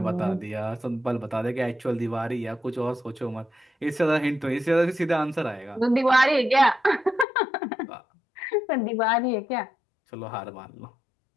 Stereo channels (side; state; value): right; drops out; at 7.2 s